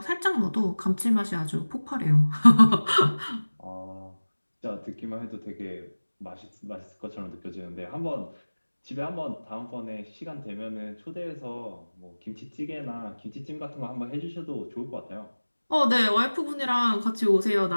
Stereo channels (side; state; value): both; inverted; correlation -1.00